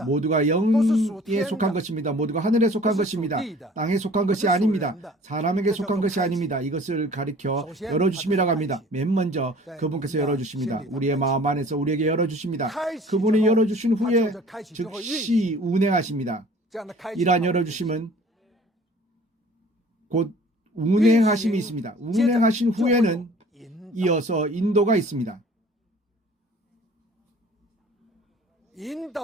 모두가 영에 속한 것입니다. 모두가 하늘에 속한 것입니다. 땅에 속한 것이 아닙니다. 사람에게 속한 것이 아닙니다. 이것을 가리켜 열어주심이라고 합니다. 맨 먼저 그분께서 열어주십니다. 우리의 마음 안에서 우리에게 열어주십니다. 그분이 열어주신 후에 즉시 운행하십니다. 이러한 열어주심은 곧 운행하심이 있습니다. 운행하신 후에는 이어서 인도가 있습니다.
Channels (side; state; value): both; normal; correlation 0.49